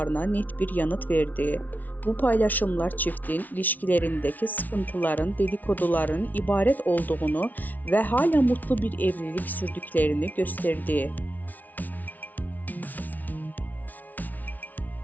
net bir yanıt verdi. Bu paylaşımlar çiftin ilişkilerindeki sıkıntıların dedikoduların ibaret olduğunu ve hala mutlu bir evlilik sürdüklerini gösterdi.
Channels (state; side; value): late; right; 0.078 ms